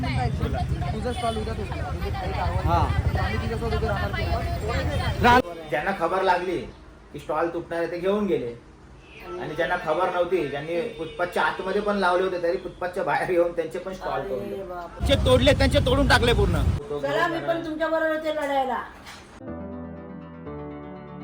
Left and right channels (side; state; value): both; identical; correlation 1.00